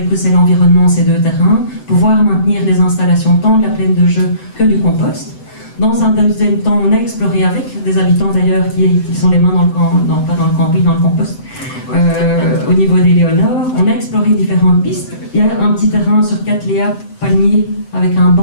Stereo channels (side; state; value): right; late; 7.9 ms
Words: Bruxelles Environnement ces 2 terrains, pouvoir maintenir des installations tant de la plaine de jeu que du compost. Dans un deuxième temps, on a exploré avec des habitants d'ailleurs qui sont les mains dans le pas dans le camping, dans le compost, au niveau d'Éléonore. On a exploré différentes pistes. Il y a un petit terrain sur 4 léas palmiers avec un